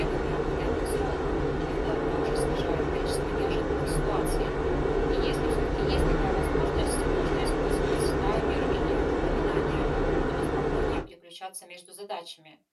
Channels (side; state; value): both; identical; correlation 1.00